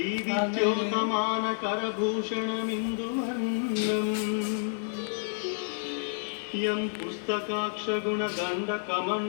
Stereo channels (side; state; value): right; silent; digital silence